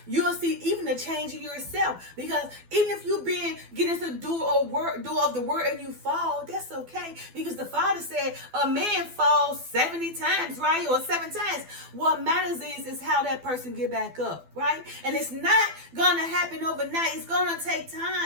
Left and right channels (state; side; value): late; left; 12 ms